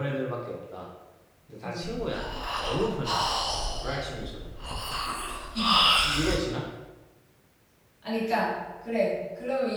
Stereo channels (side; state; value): both; identical; correlation 1.00